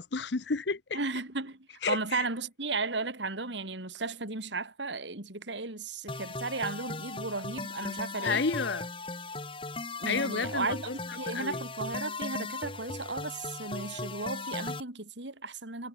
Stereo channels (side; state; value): both; normal; correlation -0.03